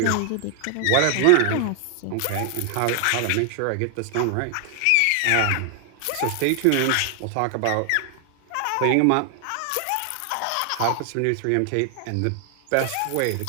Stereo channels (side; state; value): both; different; correlation 0.00